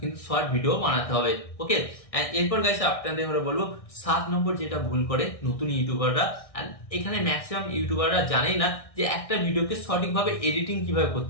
কিন্তু শর্ট ভিডিও বানাতে হবে। ওকে, এরপর গাইস আপনাদের বলবো 7 নম্বর যেটা ভুল করে নতুন ইউটিউবাররা, এখানে ম্যাক্সিমাম ইউটিউবাররা জানেই না যে একটা ভিডিওকে সঠিকভাবে এডিটিং কিভাবে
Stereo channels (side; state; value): right; late; 1.6 ms